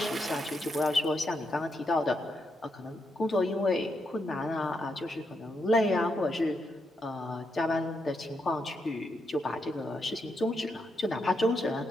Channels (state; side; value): normal; both; correlation 0.81